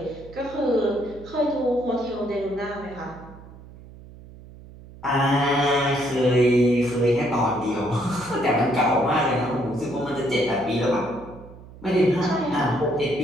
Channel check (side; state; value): right; noise; hum, 19 dB below the sound